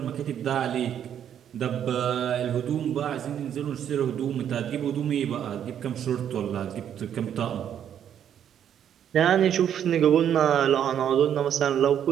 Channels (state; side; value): quieter; left; 9.4 dB